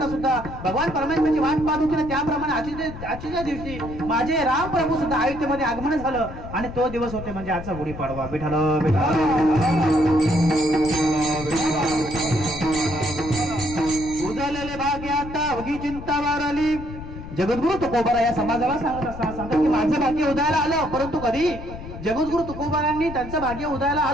सुद्धा भगवान परमेश्वराची वाट पाहत होती ना, त्याप्रमाणे आजच्या दिवशी माझे राम प्रभू सुद्धा अयोध्येमध्ये आगमन झालं आणि तो दिवस होते म्हणजे आजचा गुढीपाडवा. विठ्ठल उजळलेले भाग्यात अवघी चिंता वारली. जगद्गुरु तुकोबारा या समाजाला सांगत की माझं भाग्य उदयाला आलं, परंतु कधी जगद्गुरु तुकोबारांनी त्यांचं भाग्य उदयाला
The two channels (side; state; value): left; noise; rumble, 11 dB below the sound